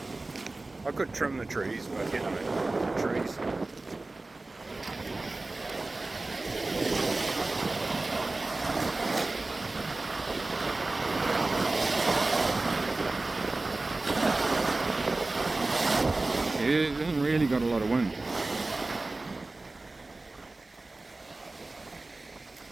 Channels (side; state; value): left; quieter; 3.2 dB